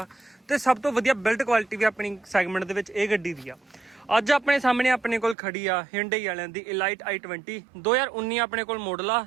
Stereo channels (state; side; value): drops out; left; at 5.4 s